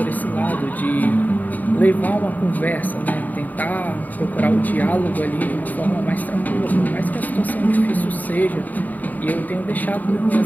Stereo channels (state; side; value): late; right; 0.081 ms